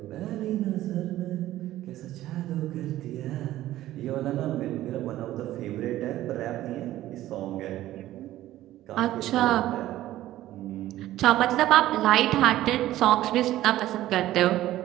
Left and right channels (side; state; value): left; quieter; 14.5 dB